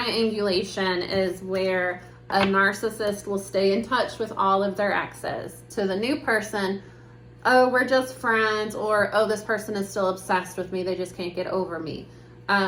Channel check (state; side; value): identical; both; correlation 1.00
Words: is where a narcissist will stay in touch with all of their exes. To the new person, oh, we're just friends, or, oh, this person is still obsessed with me, they just can't get over me.